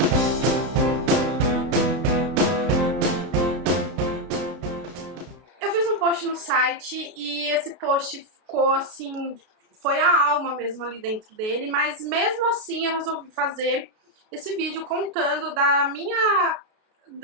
Eu fiz um post no site e esse post ficou assim, foi a alma mesmo ali dentro dele, mas mesmo assim eu resolvi fazer esse vídeo contando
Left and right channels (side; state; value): left; late; 32 ms